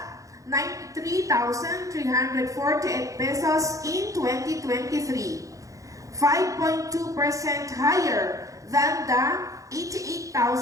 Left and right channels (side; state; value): left; late; 0.16 ms